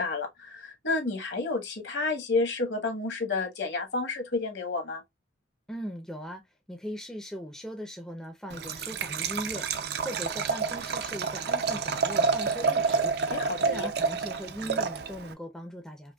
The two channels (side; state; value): both; normal; correlation -0.01